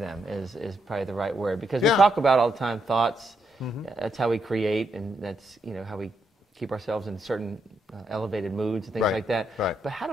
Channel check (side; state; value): both; normal; correlation 0.79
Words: is probably the right word, because we talk about all the time thoughts. That's how we create, and that's how we keep ourselves in certain elevated moods and things like that. Right. But how